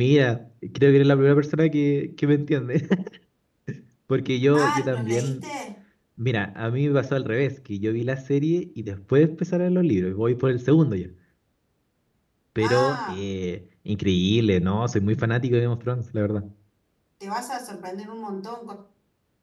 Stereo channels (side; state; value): both; identical; correlation 1.00